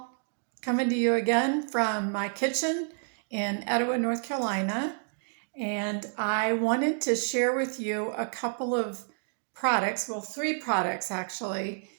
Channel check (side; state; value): left; silent; 58 dB below the other